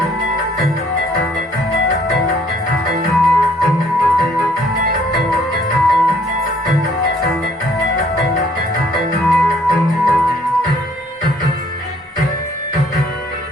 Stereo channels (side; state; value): both; normal; correlation 0.61